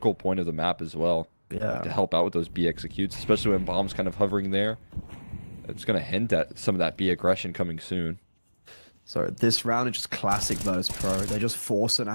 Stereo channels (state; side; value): inverted; both; correlation -1.00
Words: point of the map as well. Yeah. To help out with those B executes, especially when bomb's kind of hovering there. It's going to hint at some of that B aggression coming soon. So this round is just classic Virtus.pro. They're just forcing